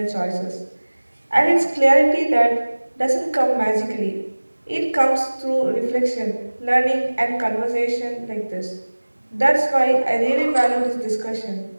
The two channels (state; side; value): inverted; both; correlation -1.00